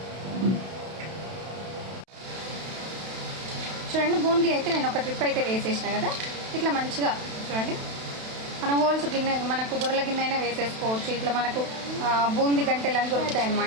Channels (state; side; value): late; left; 32 ms